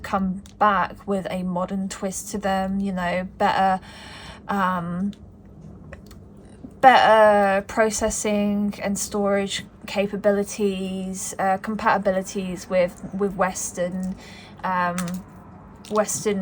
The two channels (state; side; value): identical; both; correlation 1.00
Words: back with a modern twist to them, you know, better processing and storage capabilities, compatibilities with Western